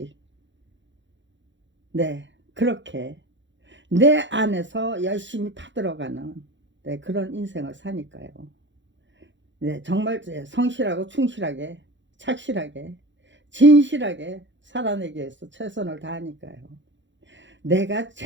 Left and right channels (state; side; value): late; left; 0.54 ms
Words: 그렇게 내 안에서 열심히 파들어가는 그런 인생을 사니까요. 정말 성실하고 충실하게 착실하게 진실하게 살아내기 위해서 최선을 다하니까요.